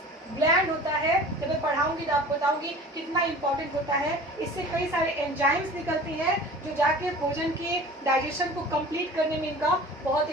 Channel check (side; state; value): both; normal; correlation 0.41